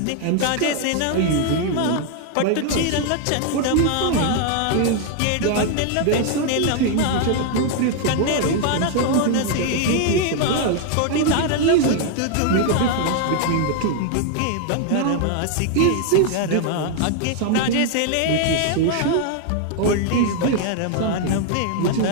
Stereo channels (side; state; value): both; different; correlation 0.00